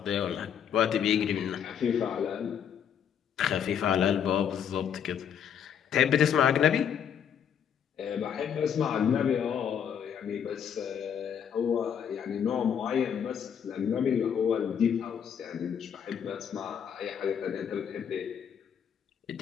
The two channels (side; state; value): right; quieter; 8.2 dB